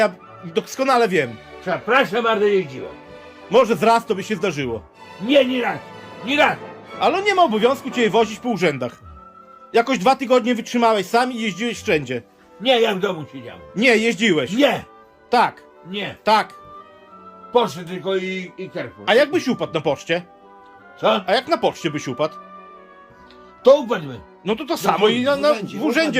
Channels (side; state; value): both; identical; correlation 1.00